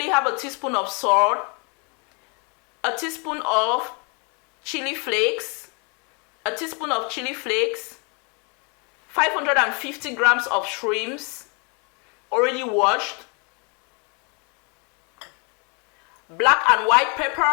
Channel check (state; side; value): quieter; right; 34.4 dB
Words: half a teaspoon of salt, a teaspoon of chili flakes, a teaspoon of chili flakes, 550 grams of shrimps already washed, black and white